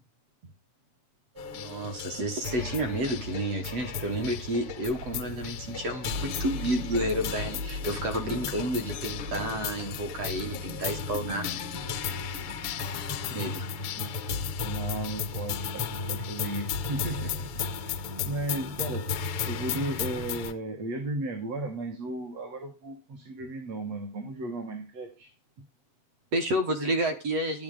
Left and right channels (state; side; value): late; left; 7.1 ms